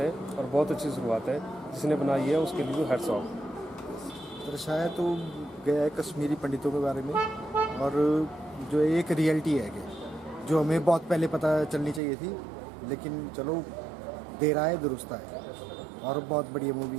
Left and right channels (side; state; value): left; drops out; at 12.0 s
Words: है और बहुत अच्छी शुरुआत है। जिसने बनाई है उसके लिए तो हैट्स ऑफ। दर्शाया तो गया है कश्मीरी पंडितों के बारे में और जो एक रियलिटी है कि जो हमें बहुत पहले पता चलनी चाहिए थी, लेकिन चलो देर आए दुरुस्त आए और बहुत बढ़िया